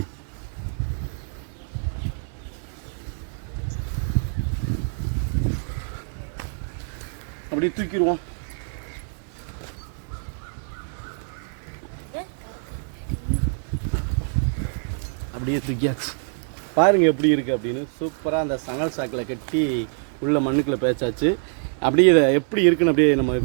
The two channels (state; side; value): silent; left; digital silence